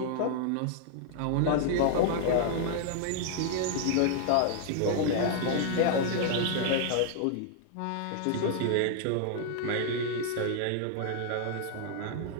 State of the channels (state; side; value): different; both; correlation 0.00